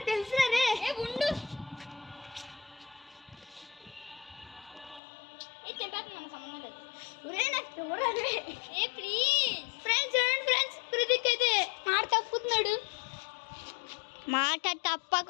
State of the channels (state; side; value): drops out; right; at 5.0 s